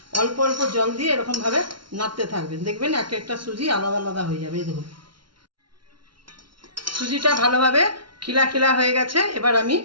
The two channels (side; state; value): left; late; 0.73 ms